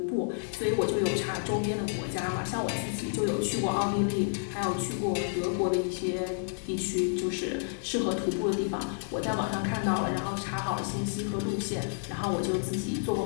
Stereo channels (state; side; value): silent; right; 58 dB below the other